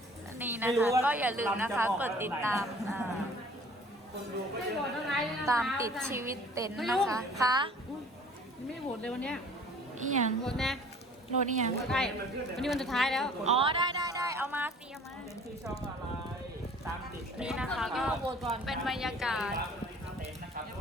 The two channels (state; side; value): normal; both; correlation 0.50